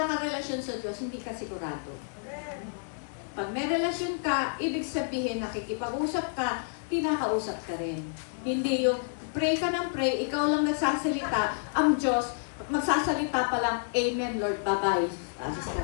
kang relasyon sa Diyos, hindi ka sigurado. Pag may relasyon ka, ibig sabihin nakikipag-usap ka, kinakausap ka rin. Hindi yung pray ka ng pray, ikaw lang nagsasalita, ang Diyos, magsasalita pa lang, Amen, Lord, bye-bye.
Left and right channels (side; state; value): right; silent; digital silence